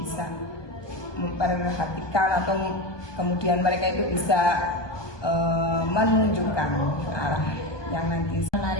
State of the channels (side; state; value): right; late; 1.2 ms